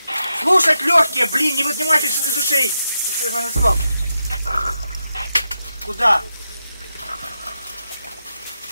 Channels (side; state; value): both; inverted; correlation -0.87